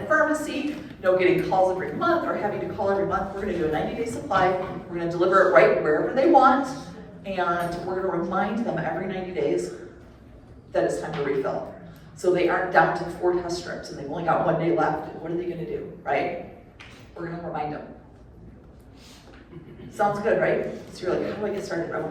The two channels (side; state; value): both; identical; correlation 1.00